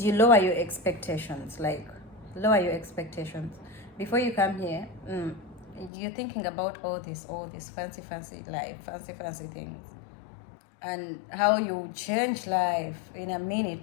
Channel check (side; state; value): right; drops out; at 5.9 s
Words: you lower your expectations. Like, lower your expectations. Before you come here, you're thinking about all this fancy life, fancy things, and how you change life in a minute.